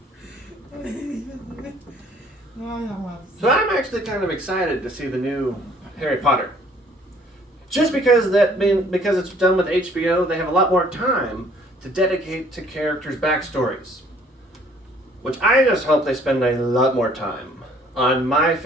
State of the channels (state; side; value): normal; both; correlation 0.59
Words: So I'm actually kind of excited to see the new Harry Potter. Just because because it's done with HBO, they have a lot more time to dedicate to characters' backstories. Which I just hope they spend a lot more time on my